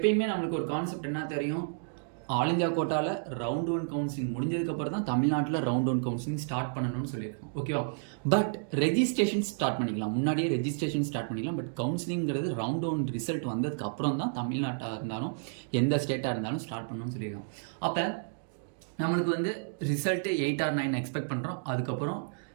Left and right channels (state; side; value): silent; left; digital silence